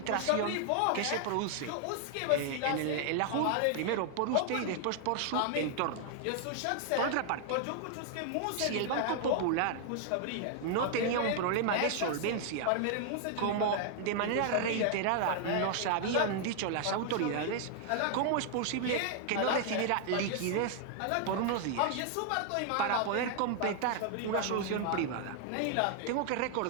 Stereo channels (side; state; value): both; different; correlation 0.00